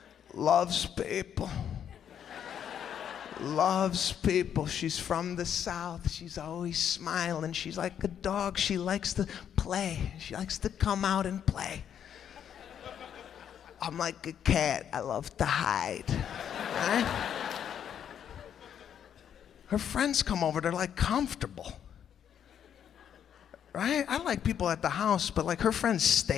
Loves people. Loves people. She's from the South. She's always smiling. She's like a dog. She likes to play. She likes to come out and play. I'm like a cat. I love to hide. Right? Her friends come over. They're like comfortable. Right? I like people at the house, but like her friends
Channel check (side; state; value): right; quieter; 9.0 dB